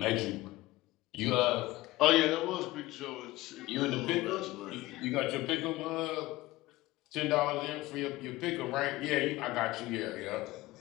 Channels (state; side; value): quieter; right; 18.3 dB